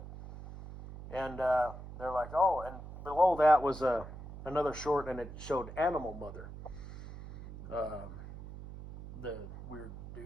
And they're like, oh, and below that was another short, and it showed Animal Mother, the weird dude.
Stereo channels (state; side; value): noise; right; hum, 13 dB below the sound